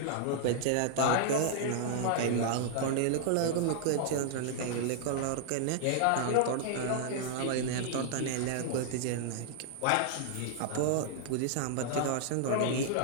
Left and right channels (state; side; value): different; both; correlation -0.01